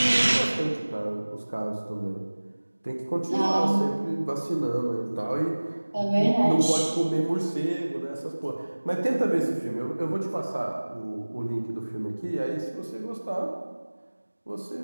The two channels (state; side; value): inverted; both; correlation -1.00